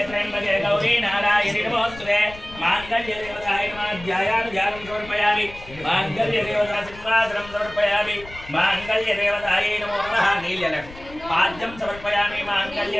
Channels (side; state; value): left; noise; rumble, 18 dB below the sound